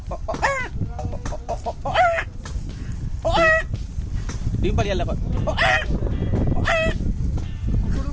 ডিম পাড়ি আল্লাহ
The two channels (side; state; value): both; identical; correlation 1.00